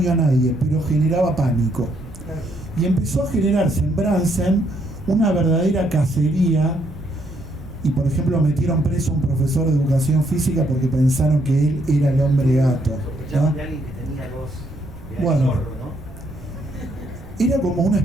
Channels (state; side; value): noise; right; rumble, 19 dB below the sound